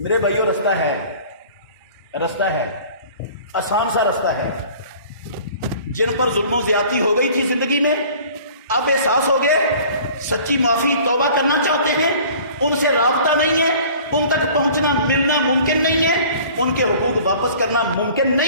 بھائیو، رستہ ہے، آسان سا رستہ ہے۔ جن پر ظلم و زیادتی ہو گئی تھی زندگی میں، اب احساس ہو گئے، سچی معافی توبہ کرنا چاہتے ہیں، ان سے رابطہ نہیں ہے، ان تک پہنچنا ملنا ممکن نہیں ہے، ان کے حقوق واپس کرنا ممکن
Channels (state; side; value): inverted; both; correlation -0.48